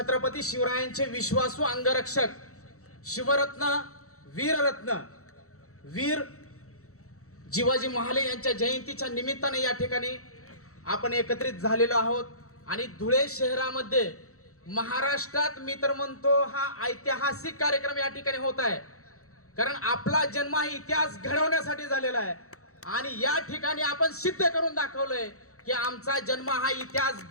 शिवरायांचे विश्वासू अंगरक्षक शिवरत्न, वीररत्न वीर जिवाजी महाले यांच्या जयंतीच्या निमित्ताने या ठिकाणी आपण एकत्रित झालेलो आहोत आणि धुळे शहरामध्ये महाराष्ट्रात मी तर म्हणतो हा ऐतिहासिक कार्यक्रम या ठिकाणी होत आहे, कारण आपला जन्म हा इतिहास घडवण्यासाठी झालेला आहे आणि या ठिकाणी आपण सिद्ध करून दाखवलंय की आमचा जन्म हा इतिहास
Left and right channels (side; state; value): right; late; 0.64 ms